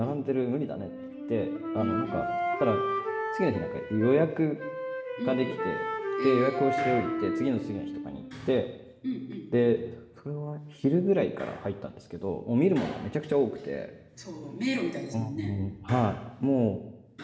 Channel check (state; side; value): identical; both; correlation 1.00